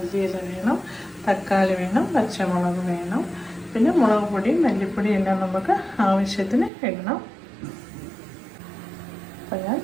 വേണം, തക്കാളി വേണം, പച്ചമുളക് വേണം, പിന്നെ മുളക് പൊടി, മല്ലിപ്പൊടി എല്ലാം നമുക്ക് ആവശ്യത്തിന് ഇടണം. അപ്പം ഞാൻ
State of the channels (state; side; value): drops out; left; at 6.7 s